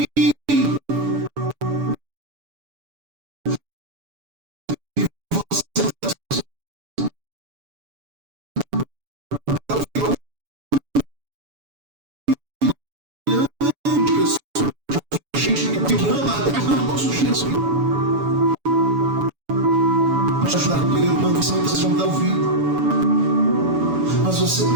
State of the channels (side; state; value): left; late; 7.0 ms